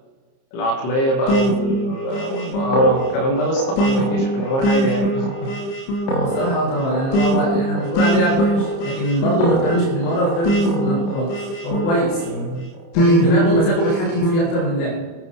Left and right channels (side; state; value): right; late; 30 ms